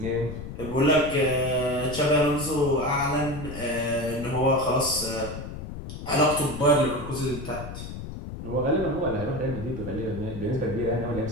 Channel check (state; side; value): noise; left; rumble, 9 dB below the sound